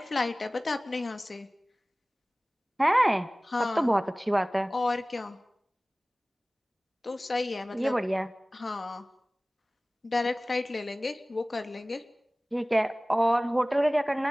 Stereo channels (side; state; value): both; normal; correlation 0.98